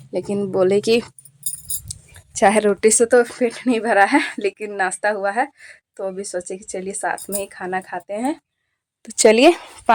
लेकिन बोले कि चाय रोटी से तो पेट नहीं भरा है, लेकिन नाश्ता हुआ है, तो अभी सोचे कि चलिए साथ में ही खाना खाते हैं। तो चलिए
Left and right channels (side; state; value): both; identical; correlation 1.00